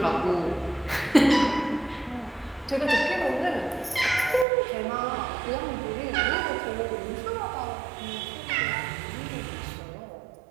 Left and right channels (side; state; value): left; drops out; at 4.5 s